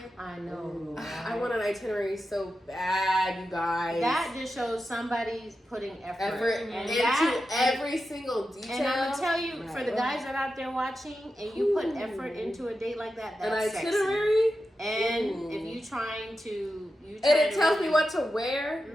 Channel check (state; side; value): normal; both; correlation 0.90